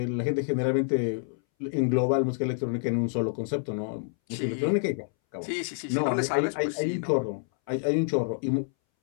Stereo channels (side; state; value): right; silent; 60 dB below the other